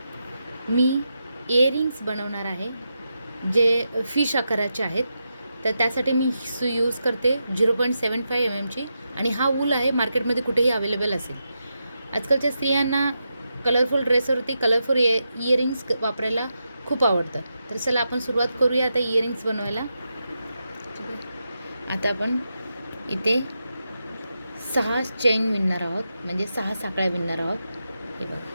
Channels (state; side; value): inverted; both; correlation -0.87